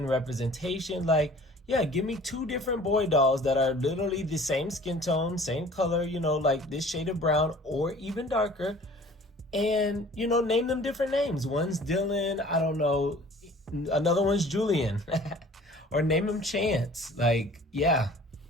representation. Like, yeah, give me 2 different boy dolls that are literally the same skin tone, same color, you know, like this shade of brown or even darker. And, you know, name them different names. One's Dylan, I don't know, another one's Julian. Or name him Chance. Like, yeah,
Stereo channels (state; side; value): normal; both; correlation 0.48